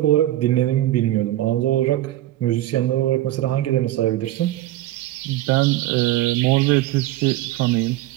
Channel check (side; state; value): left; quieter; 14.9 dB